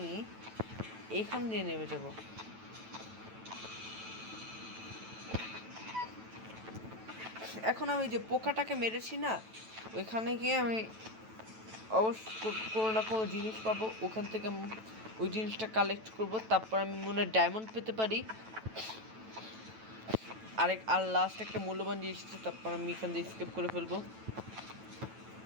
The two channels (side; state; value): left; late; 9.1 ms